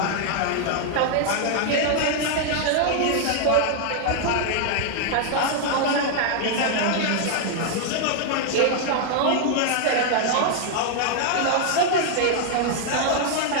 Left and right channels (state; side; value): different; both; correlation 0.00